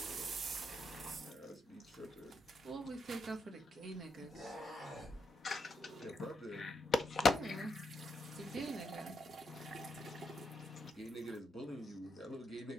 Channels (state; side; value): normal; both; correlation 0.82